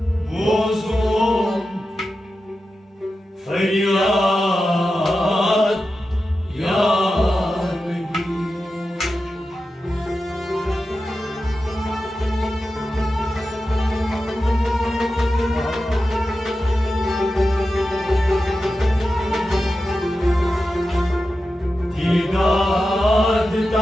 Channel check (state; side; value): normal; both; correlation 0.92